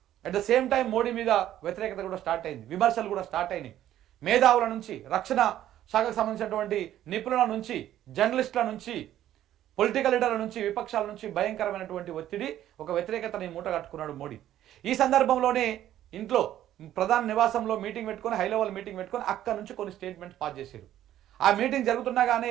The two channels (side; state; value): left; quieter; 12.3 dB